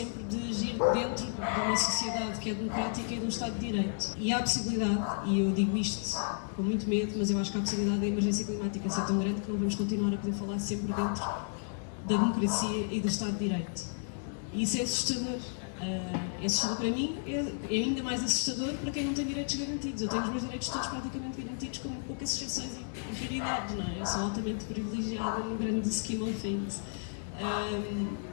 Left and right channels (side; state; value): right; silent; digital silence